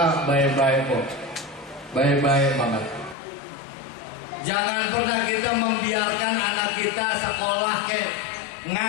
baik-baik kok. Baik-baik banget. Jangan pernah kita membiarkan anak kita sekolah kek,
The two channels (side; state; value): right; drops out; at 3.2 s